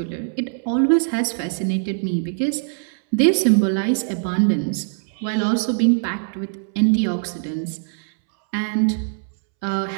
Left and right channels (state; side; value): silent; left; 64 dB below the other